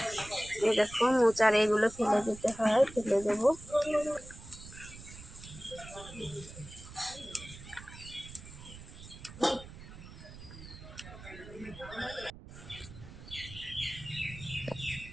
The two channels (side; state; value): right; noise; rumble, 15 dB below the sound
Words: এই দেখো, মোচার এগুলো ফেলে দিতে হয়, ফেলে দেবো।